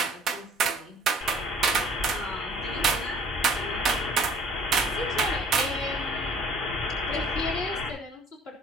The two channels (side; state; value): both; normal; correlation 0.53